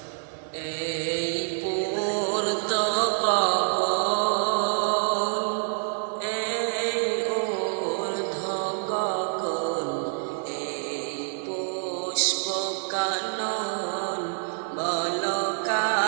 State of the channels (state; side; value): silent; left; digital silence